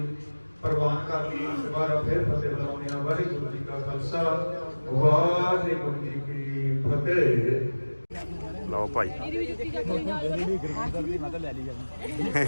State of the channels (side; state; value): both; inverted; correlation -1.00